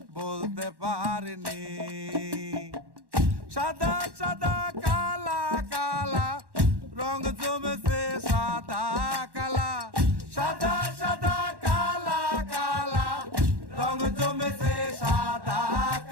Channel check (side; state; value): left; late; 1.1 ms